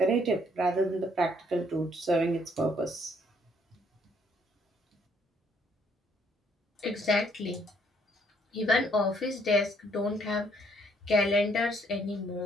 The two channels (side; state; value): both; normal; correlation 0.67